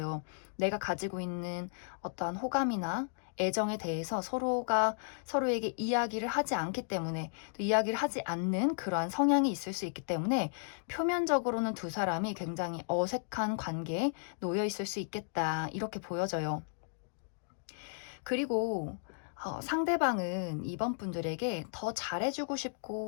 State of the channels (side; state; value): right; silent; digital silence